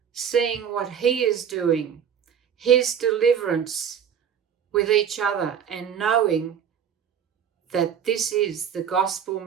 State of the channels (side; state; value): left; quieter; 8.2 dB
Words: seeing what he is doing, his deliverance with each other, and knowing that this is the gospel